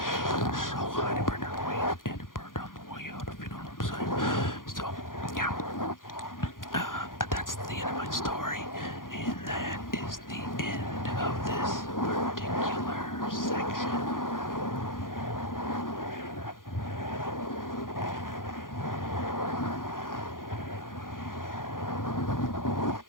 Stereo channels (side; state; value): right; late; 0.90 ms